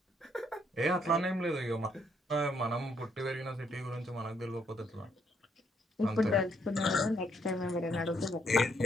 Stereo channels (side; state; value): both; normal; correlation 0.72